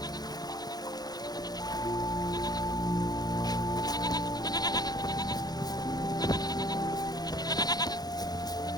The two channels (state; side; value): late; right; 0.19 ms